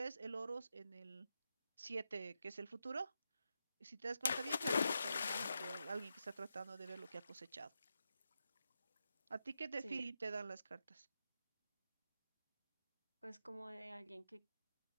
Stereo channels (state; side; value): inverted; both; correlation -0.87